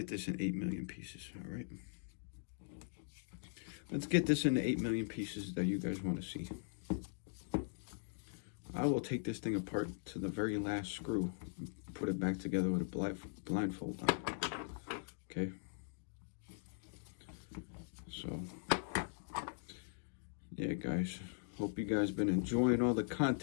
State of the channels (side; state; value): right; silent; digital silence